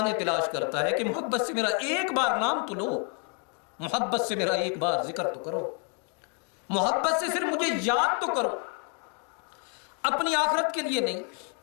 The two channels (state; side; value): quieter; right; 39.7 dB